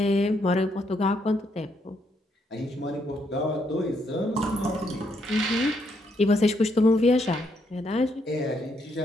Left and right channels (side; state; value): both; normal; correlation 0.75